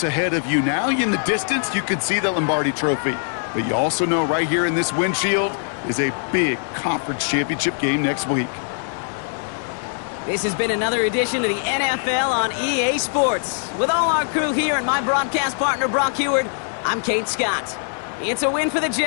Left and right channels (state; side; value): silent; right; digital silence